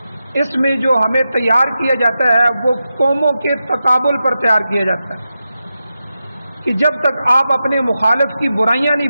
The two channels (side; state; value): both; inverted; correlation -0.90